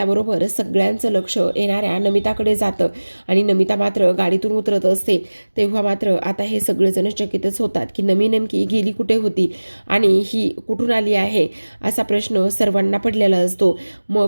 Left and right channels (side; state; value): both; inverted; correlation -1.00